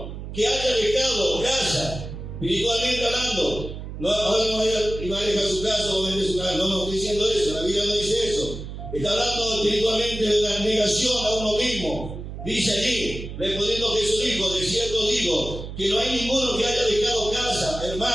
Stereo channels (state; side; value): noise; right; hum, 9 dB below the sound